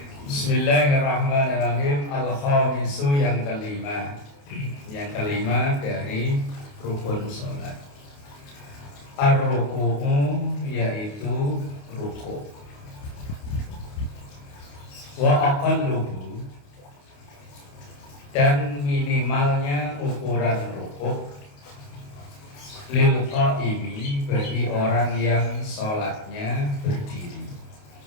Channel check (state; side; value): late; right; 28 ms